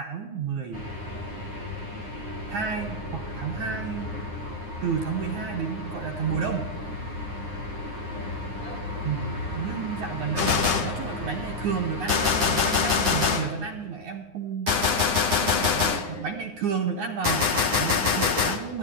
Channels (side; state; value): left; late; 9.8 ms